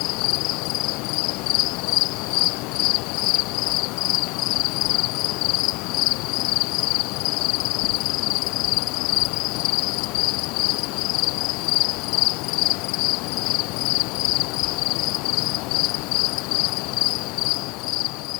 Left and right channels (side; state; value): right; quieter; 26.0 dB